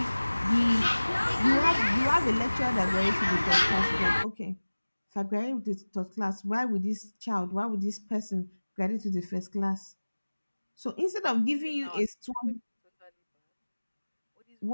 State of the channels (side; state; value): both; inverted; correlation -1.00